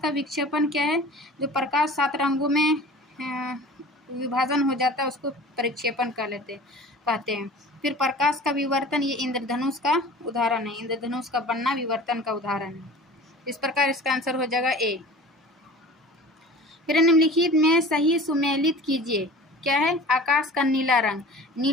का विक्षेपण क्या है? जो प्रकाश 7 रंगों में विभाजन हो जाता है उसको परिक्षेपण कहते हैं। फिर प्रकाश का विवर्तन, ये इंद्रधनुष का उदाहरण है, इंद्रधनुष का बनना विवर्तन का उदाहरण है। इस प्रकार इसका आंसर हो जाएगा ए। फिर निम्नलिखित में सही सुमेलित कीजिए। क्या है? आकाश का नीला रंग,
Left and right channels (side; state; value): both; normal; correlation 0.41